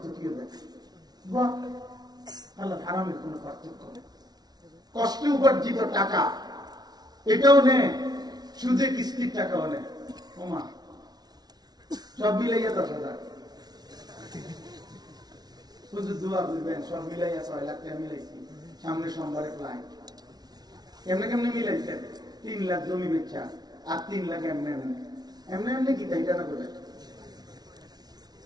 দেখে। হালাল হারামের কোন পার্থক্য নেই। কষ্টে উপার্জিত টাকা এটাও নেই, সুদে কিস্তির টাকাও নেই। ওমা সব মিলাইয়া 10,000, শুধু দোয়া করবেন, সব মিলাইয়া 6 লাখ টাকা মিলাইছি। সামনে সোমবারে ক্লায়েন্ট, কেমনে কেমনে মিলাইছেন? 3 লাখ জমি বেচা আর 3 লাখ এমনি এমনি এমনি এমনি কি তাই জানা করে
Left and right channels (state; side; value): late; left; 0.19 ms